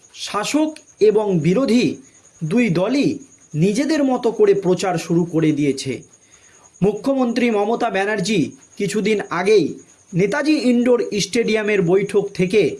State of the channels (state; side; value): identical; both; correlation 1.00